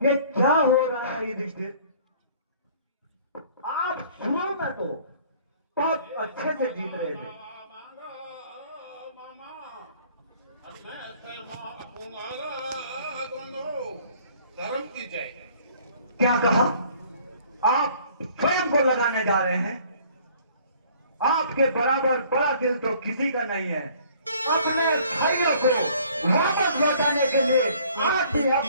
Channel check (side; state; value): both; inverted; correlation -0.56